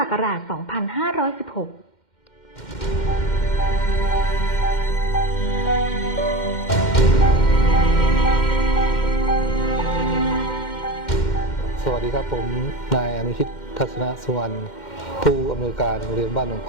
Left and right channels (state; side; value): late; right; 2.1 ms